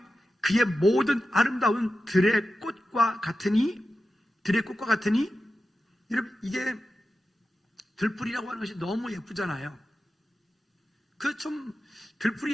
그의 모든 아름다운 들의 꽃과 같으니 여러분, 이게 들풀이라고 하는 것이 너무 예쁘잖아요. 들풀이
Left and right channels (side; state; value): both; normal; correlation 0.92